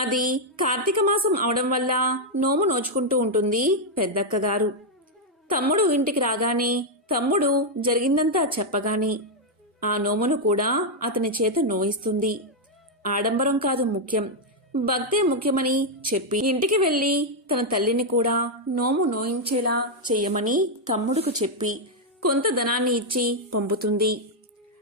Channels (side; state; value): both; normal; correlation -0.01